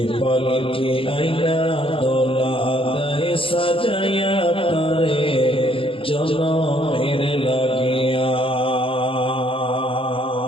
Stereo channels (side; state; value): right; late; 0.26 ms